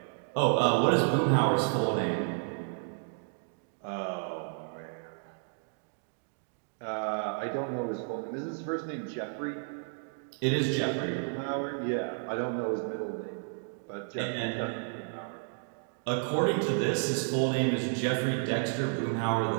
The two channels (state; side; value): silent; left; 57 dB below the other